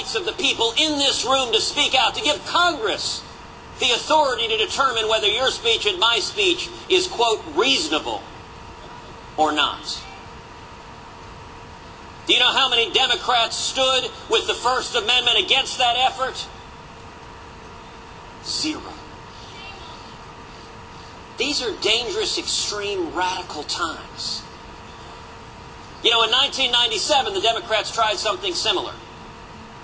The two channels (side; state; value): both; identical; correlation 1.00